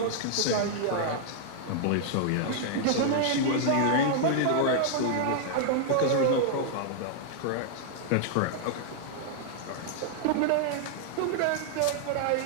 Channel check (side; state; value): both; different; correlation -0.01